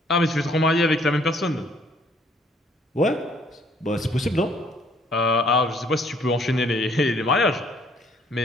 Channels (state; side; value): normal; both; correlation 0.63